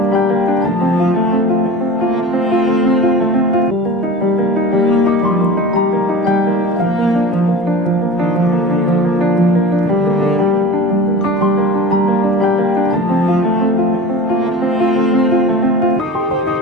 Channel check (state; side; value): normal; both; correlation 0.36